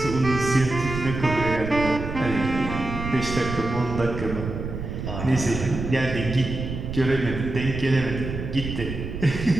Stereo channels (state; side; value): noise; right; rumble, 6 dB below the sound